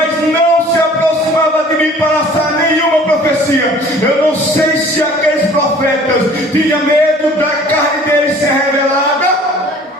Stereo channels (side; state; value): both; normal; correlation 0.50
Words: não se aproximava de mim para lançar nenhuma profecia. Eu não sei se aqueles profetas tinham medo da carne deles ser revelada